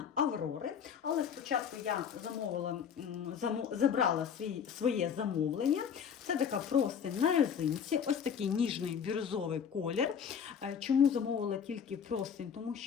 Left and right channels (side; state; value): right; quieter; 7.4 dB